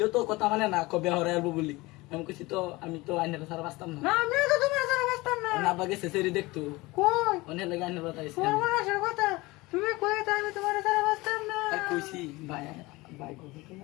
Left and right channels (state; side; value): quieter; right; 21.8 dB